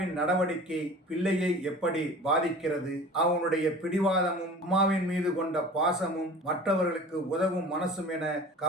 நடவடிக்கை பிள்ளையை எப்படி பாதிக்கிறது, அவனுடைய பிடிவாதமும் அம்மாவின் மீது கொண்ட பாசமும் மற்றவர்களுக்கு உதவும் மனசும் என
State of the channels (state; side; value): normal; both; correlation 0.41